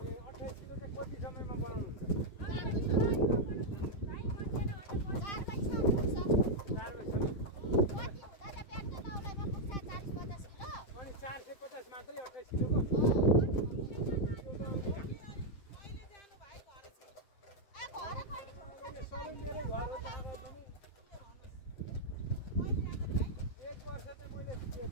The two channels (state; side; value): late; right; 7.5 ms